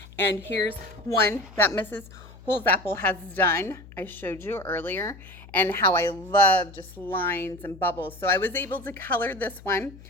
and here's one that Mrs. Holsapple has done. I showed you earlier, and how I love just lines and bubbles. So I was able to color this one.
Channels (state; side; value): noise; left; hum, 19 dB below the sound